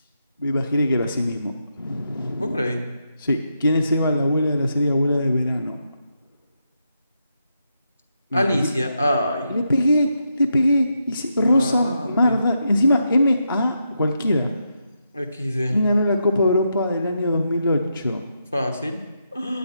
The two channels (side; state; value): both; inverted; correlation -0.83